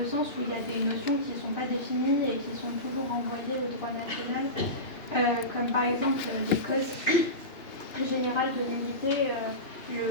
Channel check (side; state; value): right; late; 2.9 ms